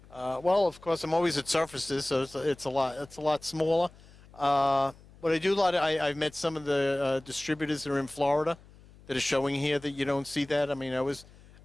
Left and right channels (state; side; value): noise; left; hum, 23 dB below the sound